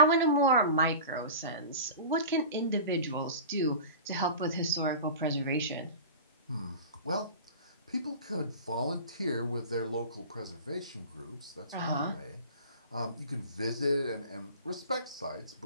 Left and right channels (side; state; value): both; inverted; correlation -0.36